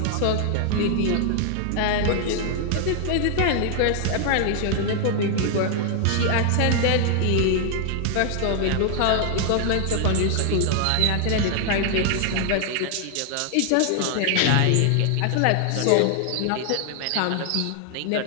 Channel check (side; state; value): both; different; correlation 0.00